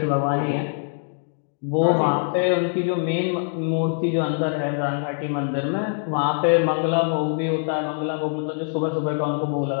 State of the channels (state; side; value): silent; right; 63 dB below the other